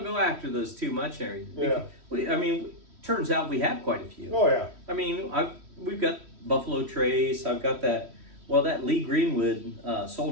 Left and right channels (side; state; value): left; late; 3.1 ms